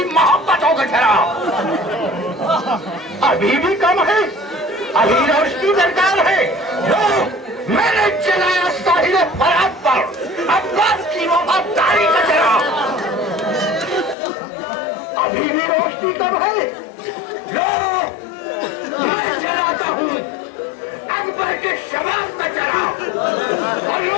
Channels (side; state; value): right; drops out; at 14.2 s